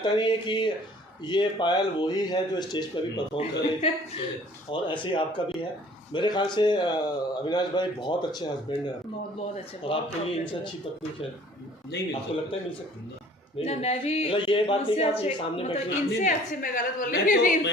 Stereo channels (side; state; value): both; normal; correlation 0.52